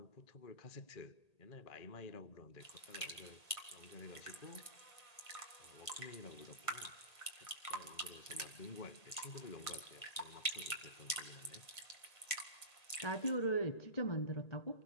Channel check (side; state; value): right; late; 1.8 ms